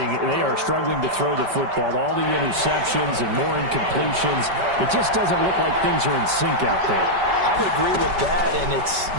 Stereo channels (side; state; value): left; late; 5.2 ms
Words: They are struggling to throw the football. All the interceptions and more incompletions. It just doesn't look like things are in sync out there. I would agree with that, and it's